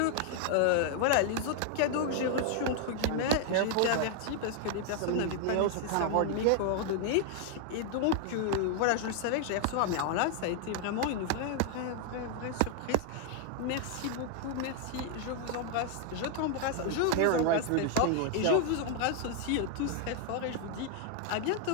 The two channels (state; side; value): different; both; correlation 0.00